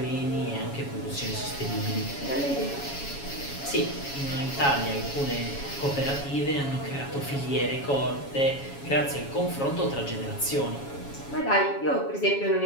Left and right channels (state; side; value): late; right; 7.2 ms